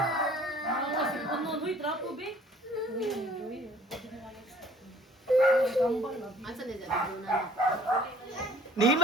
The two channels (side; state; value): both; normal; correlation 0.53